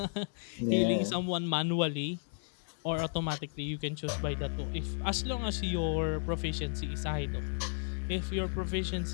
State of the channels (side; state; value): right; silent; digital silence